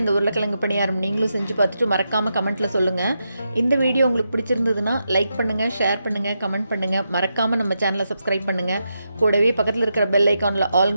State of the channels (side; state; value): both; inverted; correlation -0.85